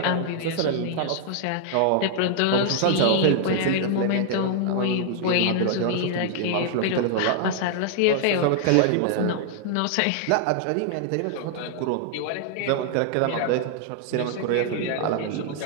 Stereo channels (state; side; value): different; both; correlation -0.01